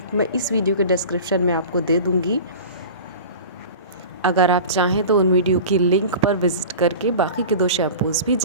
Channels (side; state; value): both; inverted; correlation -0.36